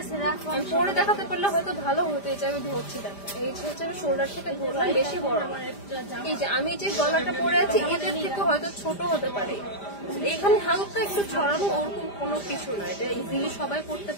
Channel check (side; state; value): right; late; 5.0 ms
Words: আমি পরে দেখাতে পারলে হয়তো ভালো হতো। এই যে আমি ধরছি দেখেন, এই যে হচ্ছে আমি শোল্ডার থেকে ধরলাম, বেশি বড় না। এই যে আমি যে গলাটা পরে আছি এটার থেকে হয়তো ছোট হতে পারে, এখানে হালকা একটু ছড়ানো, ওরকম কোনো কিছু না, এটা ইজিলি সবাই করতে